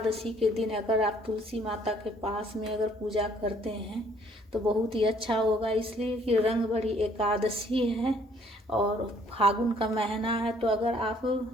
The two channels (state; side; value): normal; both; correlation 0.62